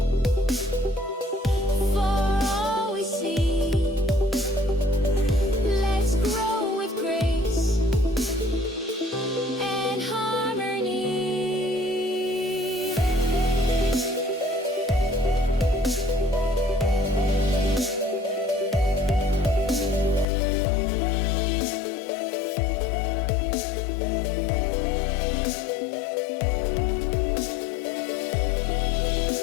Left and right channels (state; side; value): drops out; right; at 20.2 s